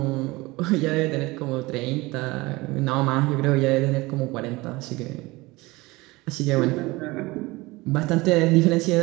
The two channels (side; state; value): left; quieter; 21.8 dB